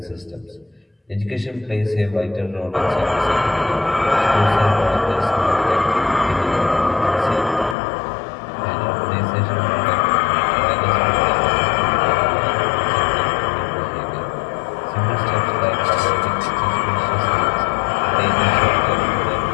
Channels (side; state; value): right; drops out; at 7.8 s